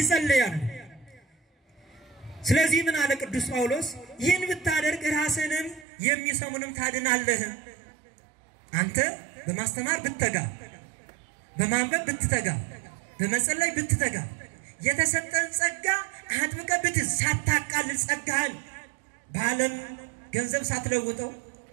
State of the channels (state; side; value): drops out; left; at 5.9 s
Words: ስለዚህ ምን አለ ቅዱስ ጳውሎስ? ይህን ብታደርግ ራስህንም የሚሰሙንም ታድናለህ። አንተ በማስተማር ብትተጋ፣ በማንበብ ብትተጋ፣ በመጸለይ ብትተጋ፣ የተሰጠን ጸጋ አጥብቀህ ብትይዝ፣ ሳታቃልል ጸጋህን በዓለም ገንዘብ ሳትለውጠው፣